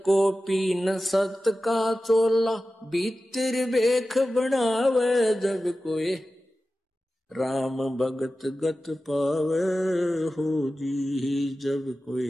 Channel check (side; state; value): both; normal; correlation 0.94